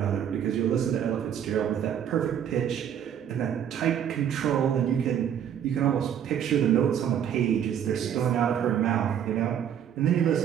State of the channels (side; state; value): left; quieter; 9.2 dB